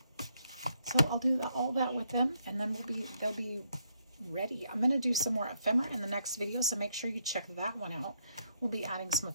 So I'll do all that with them, and then they'll be ready. I'm going to do some more ephemera in the next video, so make sure you check that one out. We'll be adding some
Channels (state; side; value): inverted; both; correlation -0.75